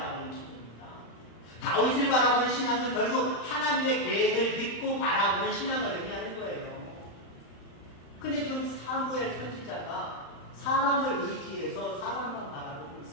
기도입니다. 다윗을 바라보는 신앙은 결국 하나님의 계획을 믿고 바라보는 신앙을 의미하는 거예요. 근데 지금 사무엘 선지자가 사람을 의지해서 사람만 바라보고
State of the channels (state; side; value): late; right; 35 ms